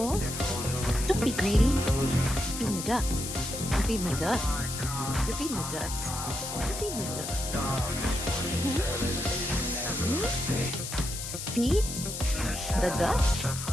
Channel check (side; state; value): left; noise; hiss, 6 dB below the sound